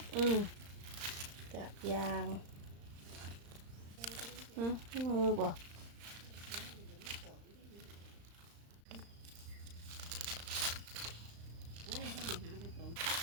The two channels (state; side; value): late; left; 35 ms